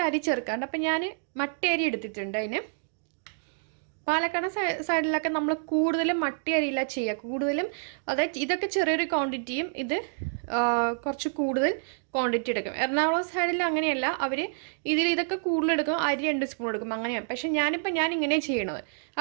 അരി ചേർക്കാറുണ്ട്. അപ്പം ഞാൻ മട്ടരി അരി എടുത്തിട്ടുണ്ട്. അതിന് പാലക്കാട് സൈഡിലൊക്കെ നമ്മൾ കൂടുതലും മട്ടി അരിയില്ല ചെയ്യുക. കൂടുതലും അതായത് ഇതൊക്കെ ചെറിയൊരു ക്വാണ്ടിറ്റിയും ഇത് കുറച്ച് കൂടുതൽ ക്വാണ്ടിറ്റി എടുക്കും. എറണാകുളം സൈഡിൽ അങ്ങനെയല്ല, അവർ ഇതൊക്കെ കൂടുതൽ എടുക്കും, അരി 2 സ്പൂൺ എടുക്കും, അങ്ങനെയാണ്. പക്ഷെ ഞാൻ ഇങ്ങനെ ചെയ്യണത്.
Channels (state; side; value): silent; left; digital silence